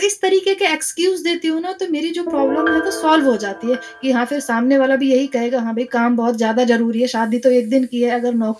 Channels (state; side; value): identical; both; correlation 1.00